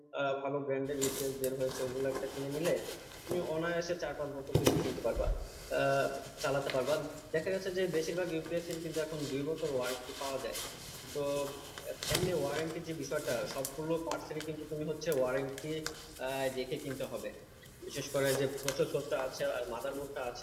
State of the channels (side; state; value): both; identical; correlation 1.00